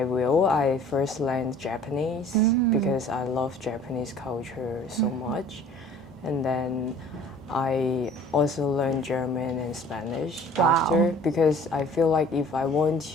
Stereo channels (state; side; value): normal; both; correlation 0.50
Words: will, I first learned Japanese because I love Japanese culture so much. And then I also learned German and Spanish after, because I feel like if I want